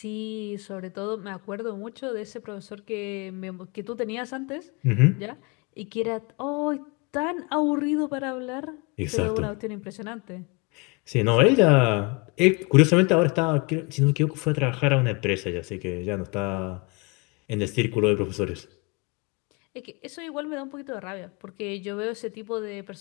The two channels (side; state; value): right; quieter; 28.9 dB